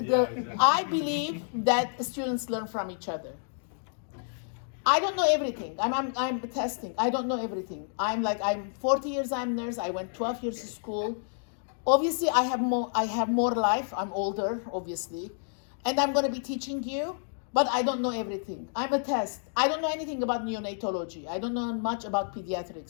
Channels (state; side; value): silent; right; digital silence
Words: I believe that students learn from each other. I don't know everything. I'm testing. I don't know everything. I'm 40 years. I'm a nurse. I went 12 years to school. Obviously, I have more life. I'm older, obviously, and I'm going to be teaching you. But I don't know everything. I'm a test. I don't know anything about neonatology. I don't know much about